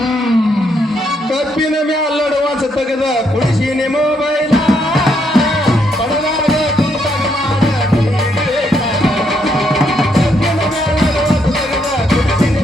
ಕಪ್ಪಿನ ಮ್ಯಾಲಡುವ ಸತ್ತಗದ ಕುಡಿಸಿನಿ ಮೊಬೈಲ್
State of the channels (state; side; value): normal; both; correlation 0.75